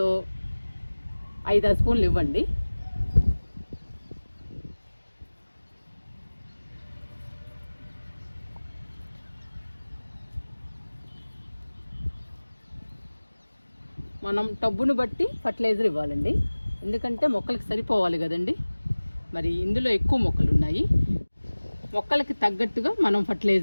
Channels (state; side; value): inverted; both; correlation -1.00